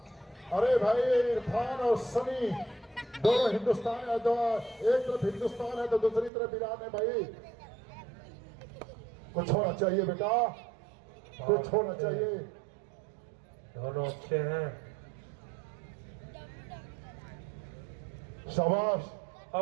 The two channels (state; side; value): drops out; left; at 6.3 s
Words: अरे भाई इरफान और सनी दोनों हिंदुस्तान है, तो एक तरफ हिंदुस्तान है तो दूसरी तरफ ईरान है। भाई कुछ होना चाहिए बेटा, कुछ होना चाहिए। दोनों अच्छे हैं। शाबाश।